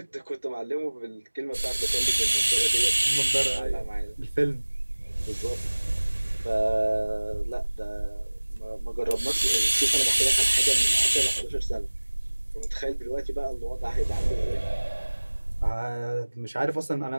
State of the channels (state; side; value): inverted; both; correlation -1.00